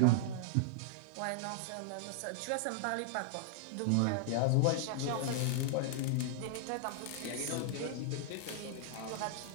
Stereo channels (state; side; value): different; both; correlation -0.01